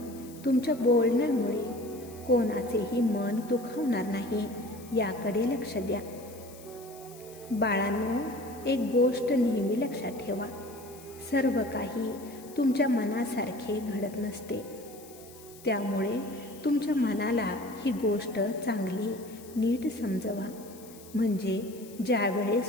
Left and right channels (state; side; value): noise; left; hiss, 20 dB below the sound